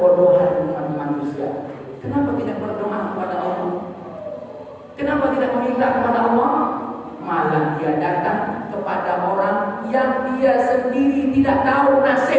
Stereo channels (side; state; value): both; identical; correlation 1.00